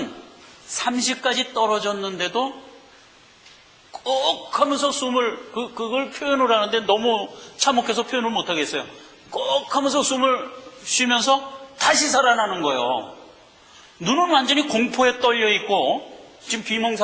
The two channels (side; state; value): both; identical; correlation 1.00